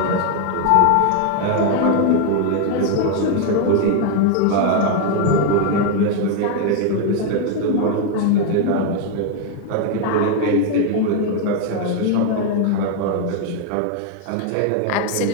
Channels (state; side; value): different; both; correlation 0.00